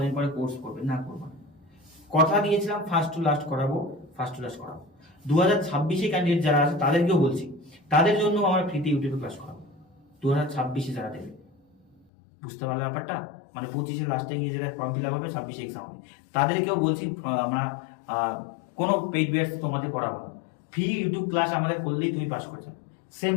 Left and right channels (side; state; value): right; drops out; at 12.1 s